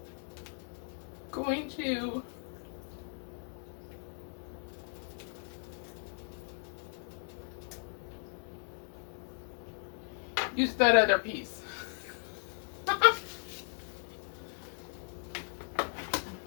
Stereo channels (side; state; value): right; silent; 53 dB below the other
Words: going to use that other piece.